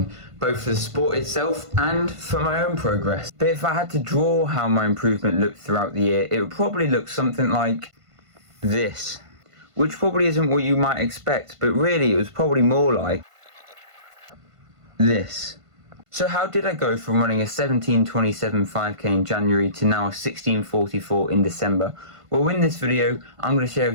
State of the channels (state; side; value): late; left; 1.5 ms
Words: both for the sport itself and for my own progress. But if I had to draw how my improvement looked throughout the year, it would probably look something like this. Which probably isn't what you might expect, but really it was probably more like this. So how did I go from running a 17:27 5k in January to now a 16:44 in December? Well, in this video, I'm going to share